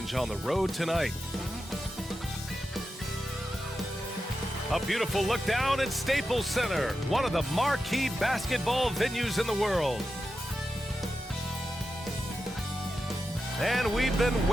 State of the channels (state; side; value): normal; both; correlation 0.90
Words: on the road tonight. A beautiful look down at Staples Center, one of the marquee basketball venues in the world. And we've been